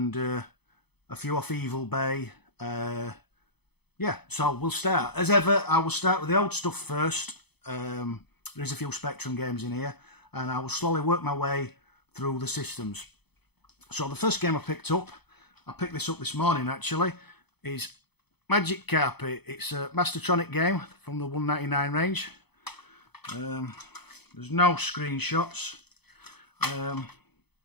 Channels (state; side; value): late; right; 0.98 ms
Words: a few off Evil Bay. Yeah, so we'll start. As ever, I will start with the old stuff first. There's a few Spectrum games in here, and I will slowly work my way through the systems. So the first game I picked this up this morning actually, is Magic Carpet. It's a Mastertronic game from the 199 range. There's no screenshots.